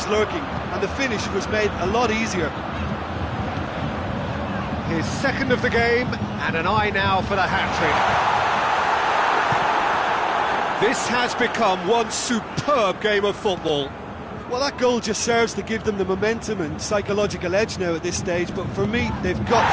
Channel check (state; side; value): identical; both; correlation 1.00